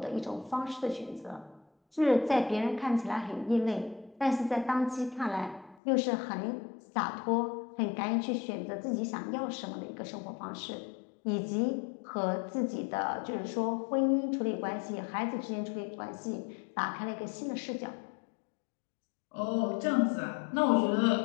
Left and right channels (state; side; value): drops out; right; at 5.8 s